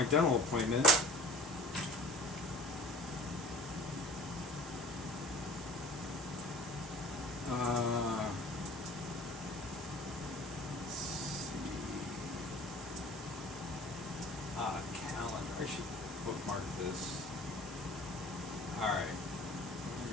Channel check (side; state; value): both; normal; correlation 0.44